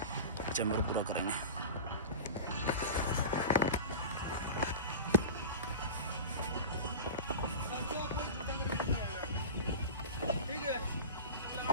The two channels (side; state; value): both; inverted; correlation -0.31